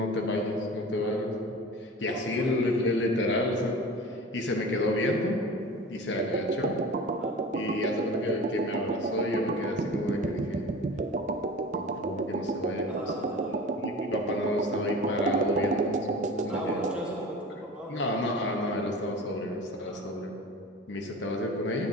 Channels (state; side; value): normal; both; correlation 0.36